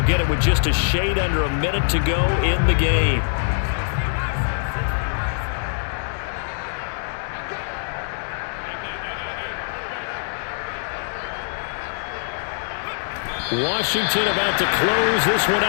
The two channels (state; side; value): silent; right; digital silence